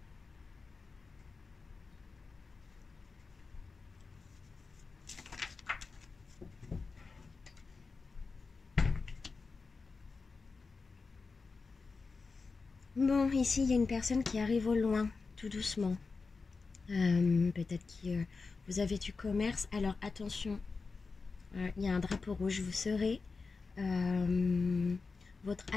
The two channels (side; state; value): right; quieter; 4.3 dB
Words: Bon, ici il y a une personne qui arrive au loin, tout doucement. Peut-être que vous avez du commerce. Alors attention, il y a un drapeau rouge. Vous serez votre